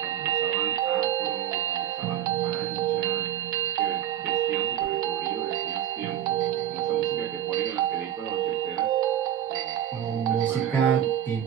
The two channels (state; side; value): quieter; left; 10.9 dB